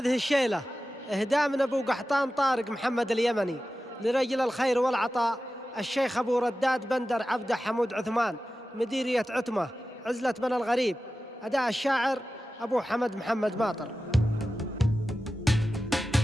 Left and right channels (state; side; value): normal; both; correlation 0.94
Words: الشيلة إهداء من أبو قحطان طارق محمد اليمني لرجل الخير والعطاء الشيخ أبو رداد بندر عبده حمود عثمان مديرية عتمة عزلة بن الغريب. أداء الشاعر أبو حمد محمد ماطر.